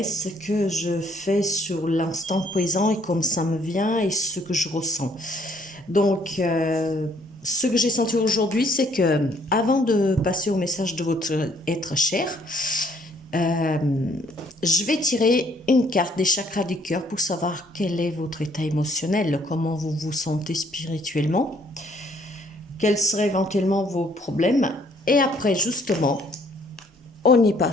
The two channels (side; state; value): both; normal; correlation 0.64